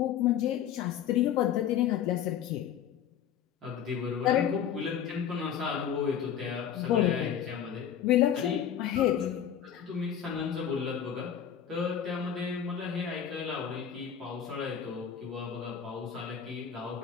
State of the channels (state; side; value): quieter; right; 9.0 dB